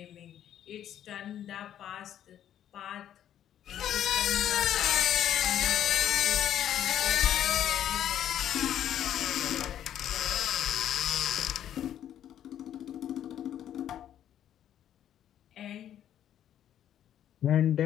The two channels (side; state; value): right; quieter; 10.7 dB